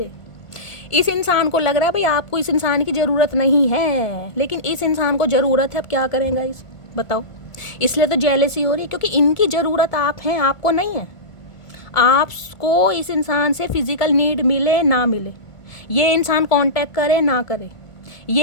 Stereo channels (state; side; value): late; right; 1.5 ms